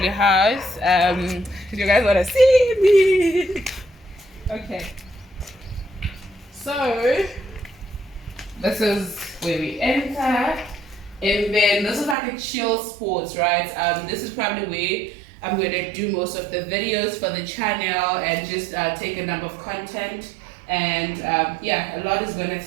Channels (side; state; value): left; drops out; at 12.2 s